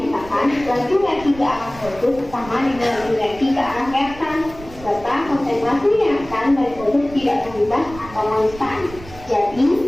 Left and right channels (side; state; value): right; noise; rumble, 17 dB below the sound